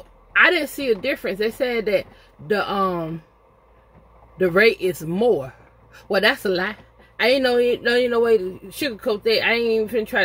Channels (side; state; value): both; identical; correlation 1.00